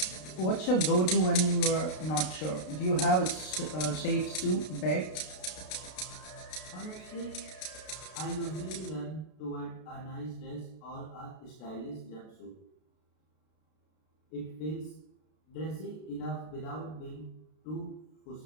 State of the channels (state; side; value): late; right; 32 ms